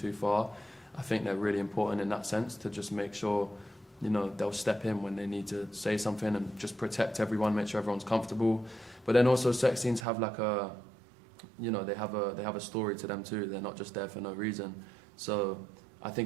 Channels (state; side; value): drops out; left; at 10.1 s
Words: far, I think they're really important in that sense, to just make sure, they'll step in when they need to say something and just protect everyone, make sure everyone's comfortable. But then also sex scenes have like they have a story to them too. They're not just there for no reason. So I